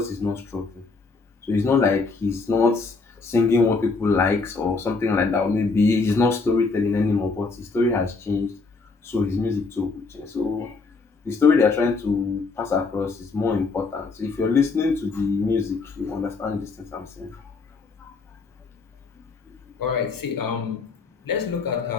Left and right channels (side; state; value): right; quieter; 4.2 dB